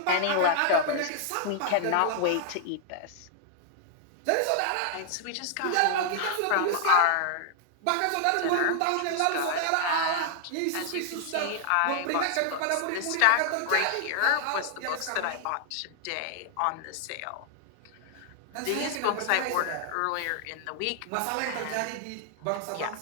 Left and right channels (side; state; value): both; different; correlation 0.00